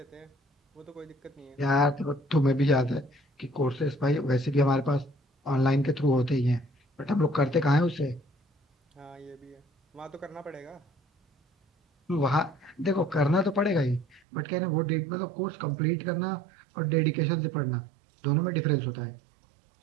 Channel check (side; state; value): left; drops out; at 14.2 s